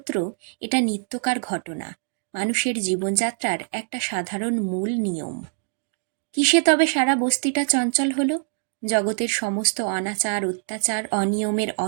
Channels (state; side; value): silent; left; digital silence